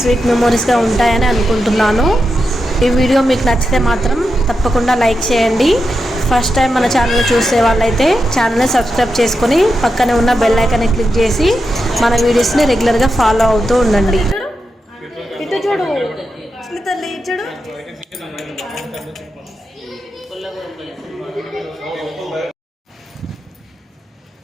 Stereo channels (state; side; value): normal; both; correlation 0.88